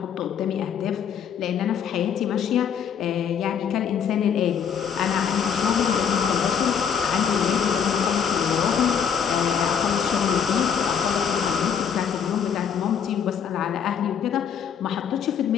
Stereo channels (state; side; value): quieter; right; 7.6 dB